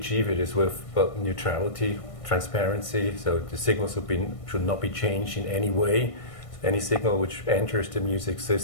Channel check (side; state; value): right; late; 1.6 ms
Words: it is with neutrality, transparency. So the signals should not be changed in any way. Any signal which enters the music